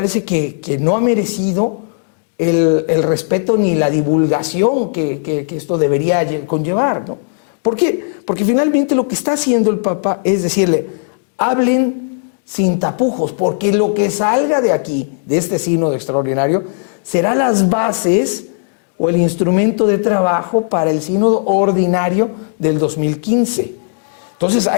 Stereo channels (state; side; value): silent; right; digital silence